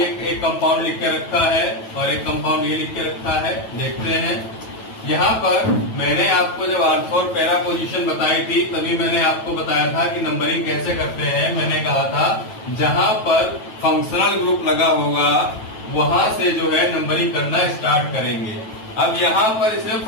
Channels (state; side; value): late; right; 9.2 ms